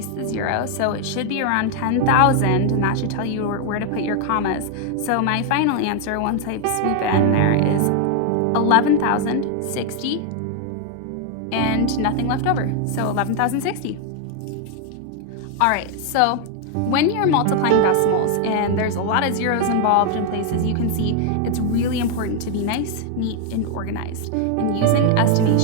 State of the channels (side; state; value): both; different; correlation 0.01